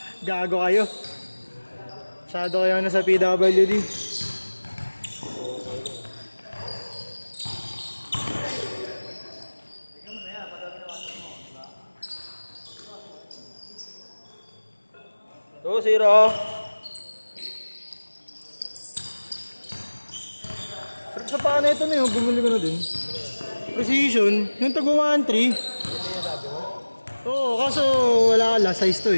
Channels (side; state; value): both; inverted; correlation -1.00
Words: Gago kayo. Masyado kayo na sa PWD. Go, Zero. Sa paano ito na yun, bumili ko na din. Precision, yung tago 1.3. Oo, kaso wala ala, size to